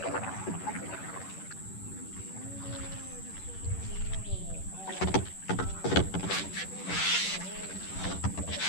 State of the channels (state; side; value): late; right; 10 ms